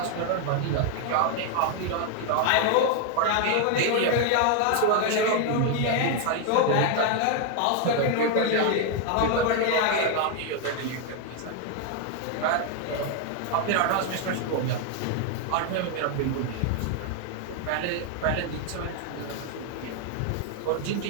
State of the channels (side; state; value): both; different; correlation 0.00